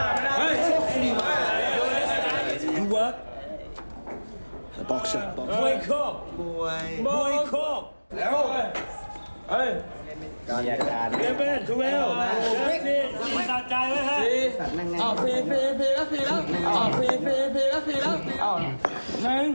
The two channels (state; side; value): inverted; both; correlation -1.00